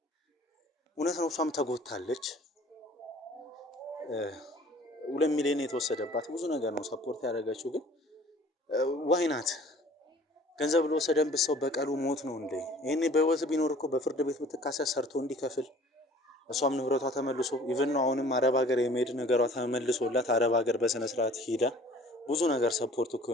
እውነት ነው። እሷም ተጎታለች። 2 ሚሊዮን የተወሰደባት ብዙ ነገር ነው ሰፖርት ያደረገችው። ግን ዋይናት ገንዘብ ለወሰደንበት ሰው በቀሉ ሞት ነው እንዴ? ይሄኔ በህይወት ቢኖር እኮ በፍርድ ቤት ብትካሰስ ሰርቶ እንዲከፍል እሷም ንብረቷ ተመልሶ ኢቭን ነው አሁንም አረብ ሀገር የመሄድ ነገሯ ተመልሶላት አረብ ሀገር በስነ ስርዓት ሄዳ ብዙ ነገር ሰፖርት እኮ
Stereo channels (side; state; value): both; normal; correlation 0.51